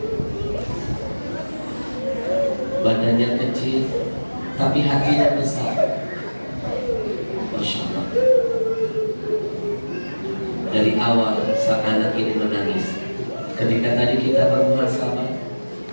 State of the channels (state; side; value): inverted; both; correlation -1.00